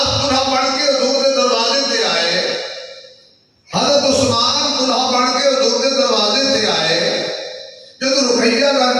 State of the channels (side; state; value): both; identical; correlation 1.00